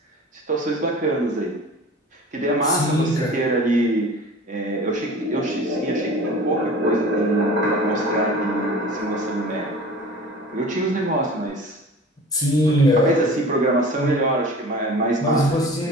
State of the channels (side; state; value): both; normal; correlation 0.40